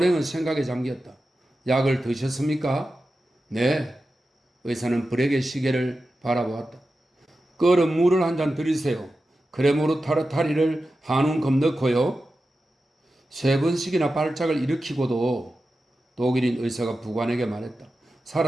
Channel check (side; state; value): both; normal; correlation 0.92